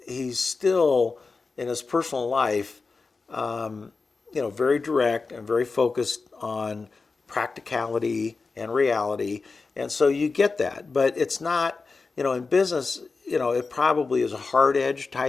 still in his personal life, very direct and very focused on practicality and reality, and so you get that. But it's not, in business, it probably is a hard edge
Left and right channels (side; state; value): right; quieter; 4.2 dB